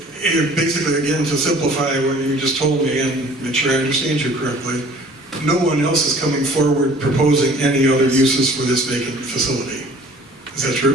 basically, again, to simplify what you just told me and make sure I understand you correctly, no one else is coming forward proposing any other uses for this vacant facility. Is that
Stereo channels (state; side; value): normal; both; correlation 0.51